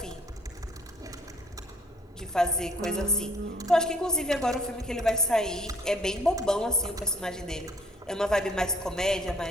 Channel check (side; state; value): both; normal; correlation 0.60